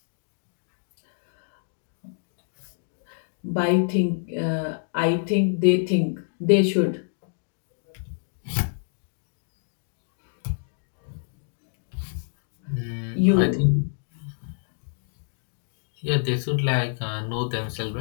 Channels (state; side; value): silent; right; digital silence